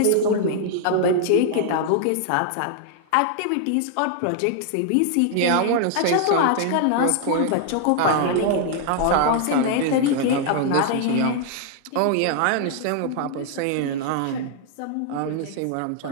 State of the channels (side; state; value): both; different; correlation 0.00